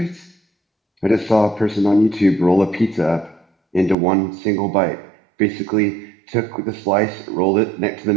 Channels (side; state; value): left; drops out; at 4.0 s